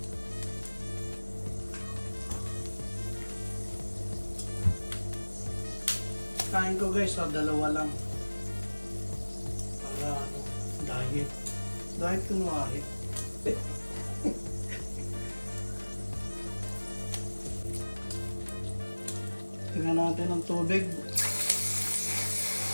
Kain ko guys, dalawa lang. Para diet. Diet kunwari. Tingnan natin ang tubig.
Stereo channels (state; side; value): inverted; both; correlation -1.00